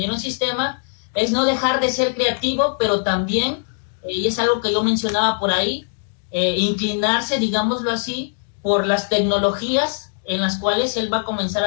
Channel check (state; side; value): silent; right; digital silence